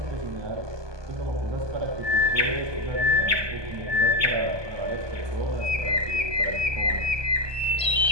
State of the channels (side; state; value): left; late; 1.2 ms